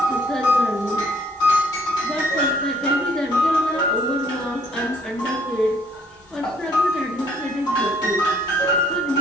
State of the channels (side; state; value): both; normal; correlation 0.63